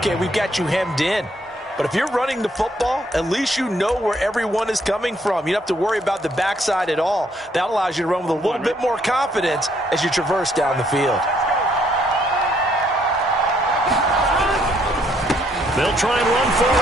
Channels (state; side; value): normal; both; correlation 0.69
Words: we've got you hemmed in. But if you're running the football, at least you know where everyone is coming from. You don't have to worry about the backside at all. That allows you to run with a little bit more confidence as you traverse down the field. They'll try and run for it